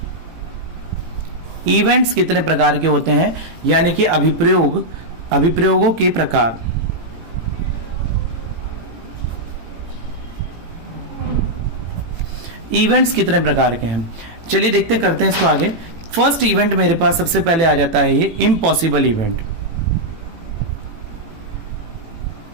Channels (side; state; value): left; late; 18 ms